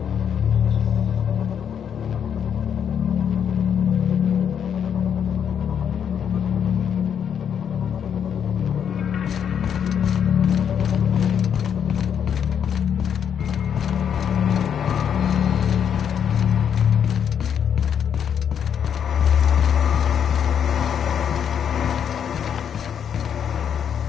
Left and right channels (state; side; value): quieter; right; 8.2 dB